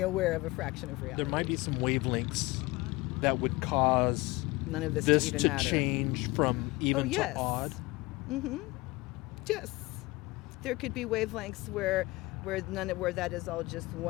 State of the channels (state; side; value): quieter; right; 22.1 dB